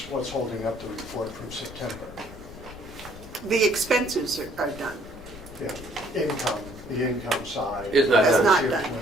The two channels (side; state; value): left; noise; rumble, 16 dB below the sound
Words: holding up the report from September? The expenses are done. Yeah, the income side. Is not It's done. not done.